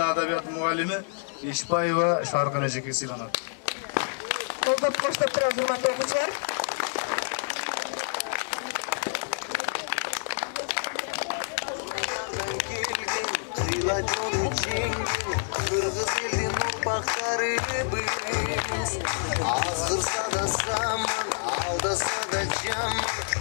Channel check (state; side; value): silent; right; digital silence